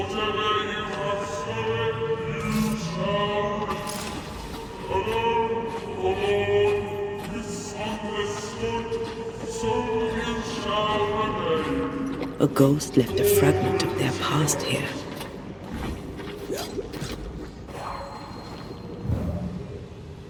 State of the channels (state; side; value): identical; both; correlation 1.00